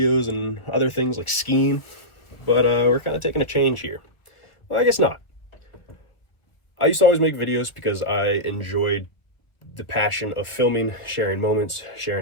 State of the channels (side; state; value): right; late; 1.2 ms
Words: and other things like skiing. But we're kind of taking a change here. Well, I guess not. I used to always make videos because I enjoyed the passion of filming, sharing moments,